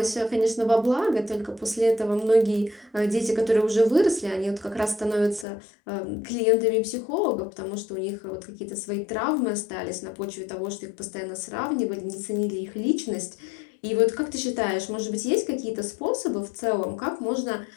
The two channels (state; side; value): drops out; right; at 5.5 s